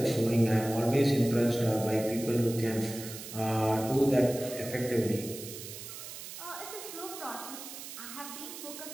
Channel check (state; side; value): noise; right; hiss, 11 dB below the sound